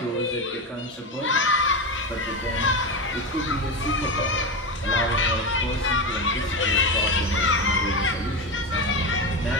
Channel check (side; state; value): both; normal; correlation 0.17